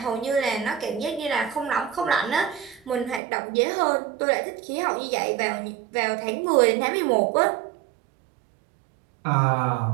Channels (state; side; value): drops out; left; at 3.2 s